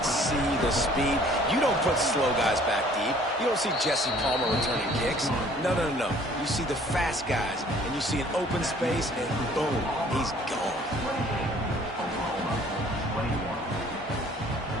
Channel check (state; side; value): normal; both; correlation 0.55